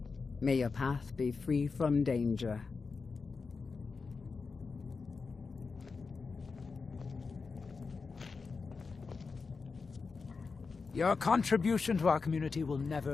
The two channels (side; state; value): right; quieter; 4.7 dB